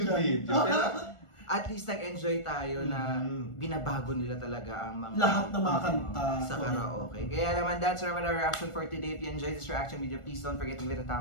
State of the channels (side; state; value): right; late; 1.4 ms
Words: dyan. Pero at least nag-enjoy tayo na binabago nila talaga ang mga lahat ng mga kanta sa karaoke. Kaya naman, that's our reaction for today. If you enjoyed this reaction video, please don't forget to give it a